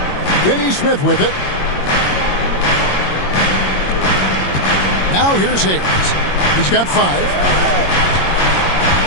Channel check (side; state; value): right; late; 22 ms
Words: Finney-Smith with it. Now here's Hayes. He's got 5.